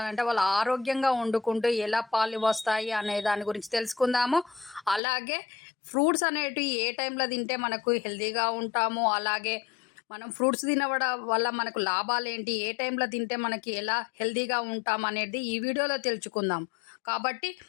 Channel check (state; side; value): drops out; right; at 5.0 s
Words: వాళ్ళు ఆరోగ్యంగా వండుకుంటూ ఎలా పాలు వస్తాయి అనే దాని గురించి తెలుసుకుందాము. అలాగే ఫ్రూట్స్ అనేటివి ఏ టైంలో తింటే మనకు హెల్తీగా ఉంటాము, అలాగే మనం ఫ్రూట్స్ తినవడం వల్ల మనకు లాభాలు ఏంటి, ఏ టైంలో తింటే మనకి ఎలా హెల్తీగా ఉంటాం అనేది ఈ వీడియోలో తెలుసుకుందాం. కాబట్టి